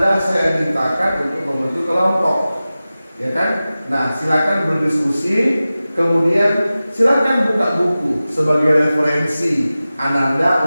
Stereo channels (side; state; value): both; inverted; correlation -0.96